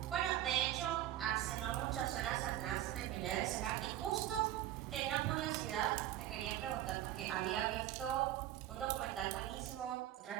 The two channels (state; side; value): quieter; left; 13.1 dB